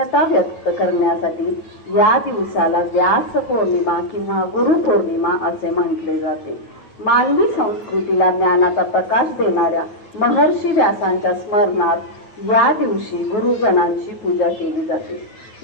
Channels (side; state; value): right; late; 9.4 ms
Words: व्यक्त करण्यासाठी या दिवसाला व्यास पौर्णिमा किंवा गुरुपौर्णिमा असे म्हटले जाते. मानवी संस्कृतीला ज्ञानाचा प्रकाश देणाऱ्या महर्षी व्यासांच्या स्मरणार्थ या दिवशी गुरुजनांची पूजा केली जाते.